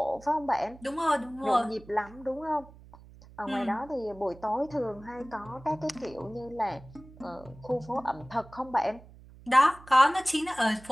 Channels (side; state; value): right; noise; hum, 21 dB below the sound